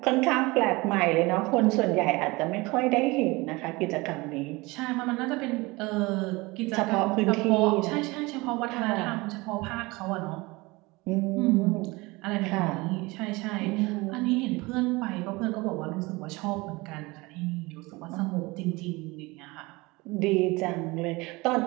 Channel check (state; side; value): quieter; left; 23.3 dB